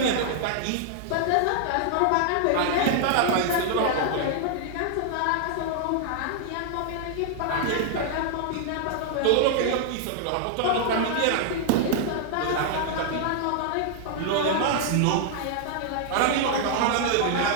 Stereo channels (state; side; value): different; both; correlation -0.01